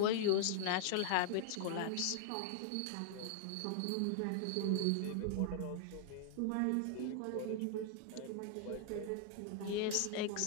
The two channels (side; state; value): both; different; correlation 0.00